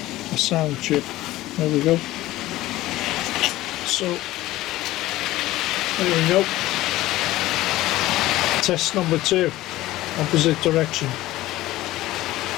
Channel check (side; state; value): right; quieter; 16.6 dB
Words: sound chip. There we go. So, there we go. Test number 2. Opposite direction.